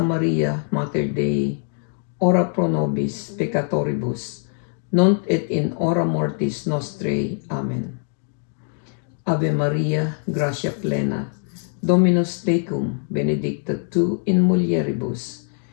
Maria, Mater Dei, ora pro nobis peccatoribus, nunc et in hora mortis nostrae. Amen. Ave Maria, gratia plena, Dominus tecum benedicta tu in mulieribus,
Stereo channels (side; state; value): right; silent; 58 dB below the other